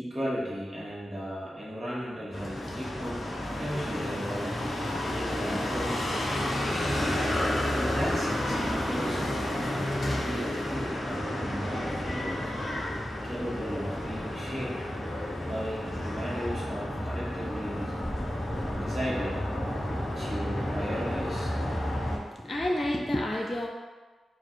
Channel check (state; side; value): normal; both; correlation 0.92